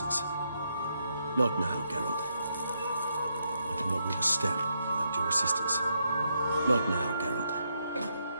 Not now, Geralt. I cannot move a step without your assistance. Not now, Geralt.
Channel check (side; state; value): both; inverted; correlation -0.79